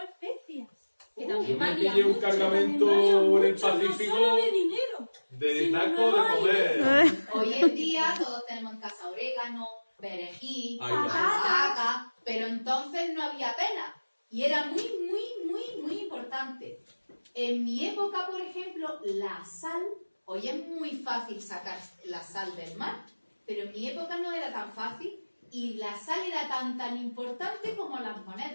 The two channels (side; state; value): both; inverted; correlation -1.00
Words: especias. Que Yo también me valía pillé un mucho. cargamento También en valía el mucho, no Pacífico solo de dinero. de sino taco de no comer. Hoy en día todos tenemos en casa orégano, perejil, Ahí va. albahaca, pero entonces no había pena. Y era muy importante. En mi época, por ejemplo, la sal, hoy es muy fácil sacar la sal del mar, pero en mi época no era tan fácil y la sal era tan importante como las